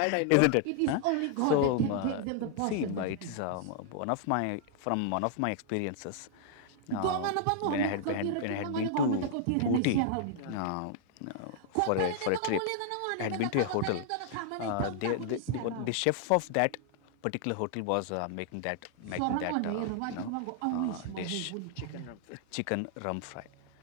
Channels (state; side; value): different; both; correlation 0.00